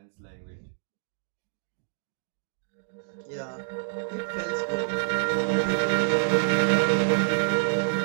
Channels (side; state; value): left; silent; 60 dB below the other